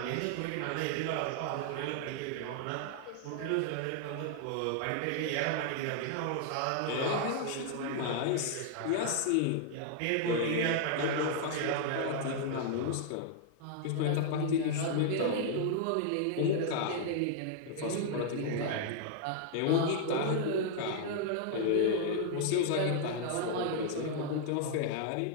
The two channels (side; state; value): both; different; correlation -0.01